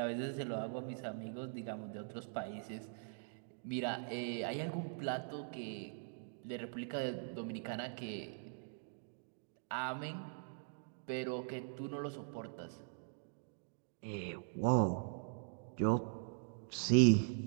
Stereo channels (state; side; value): silent; left; digital silence